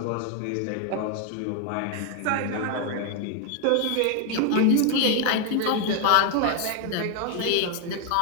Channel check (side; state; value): both; different; correlation 0.01